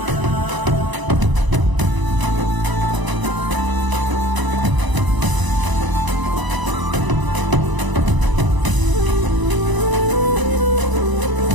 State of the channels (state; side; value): late; left; 1.0 ms